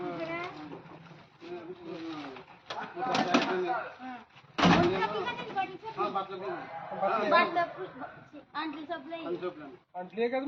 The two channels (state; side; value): identical; both; correlation 1.00